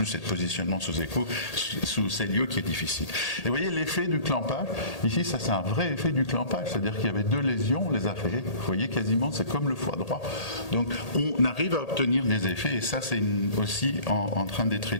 ce positionnement sous écho, sous cellio qui est difficile. Et vous voyez l'effet du clampage, ici ça c'est un vrai effet du clampage, c'est-à-dire qu'il y avait 2 lésions, on les a fait, vous voyez quasiment c'est comme le foie droit, donc on arrive à obtenir des effets, et ça c'est aussi en train d'être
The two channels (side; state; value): right; late; 1.8 ms